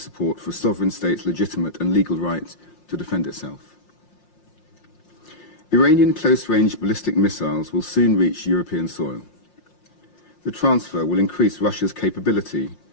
for a sovereign state's legitimate and legal right to defend itself. Iranian close-range ballistic missiles will soon reach European soil. The transfer will increase Russia's capability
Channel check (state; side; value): late; right; 5.7 ms